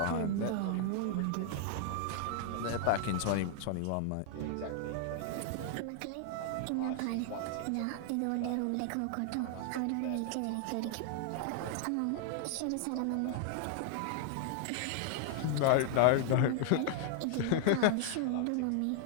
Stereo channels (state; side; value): different; both; correlation 0.00